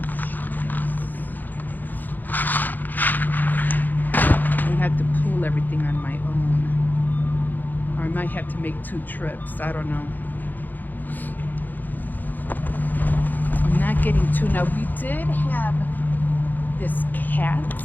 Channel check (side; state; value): right; late; 0.086 ms